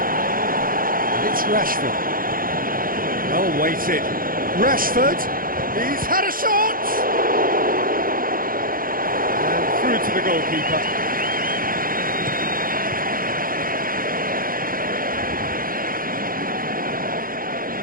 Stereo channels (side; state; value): left; late; 0.41 ms